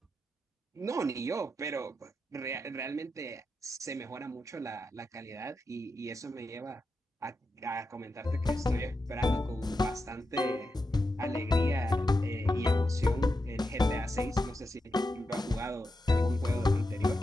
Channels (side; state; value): both; normal; correlation 0.88